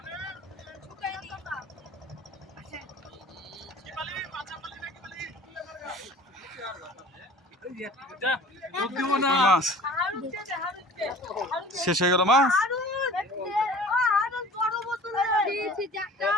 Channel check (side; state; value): both; normal; correlation 0.45